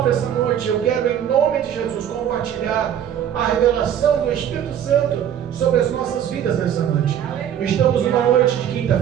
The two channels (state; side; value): quieter; left; 9.7 dB